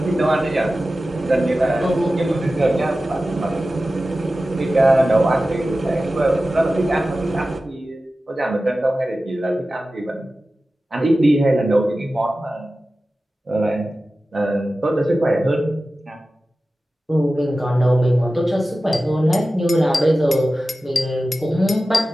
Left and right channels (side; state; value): both; normal; correlation 0.95